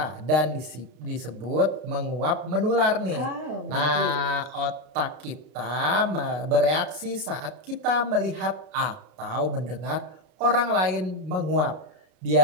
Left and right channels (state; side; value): late; left; 33 ms